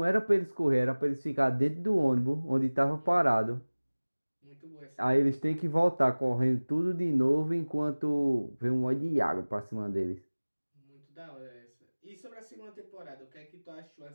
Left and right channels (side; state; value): both; inverted; correlation -1.00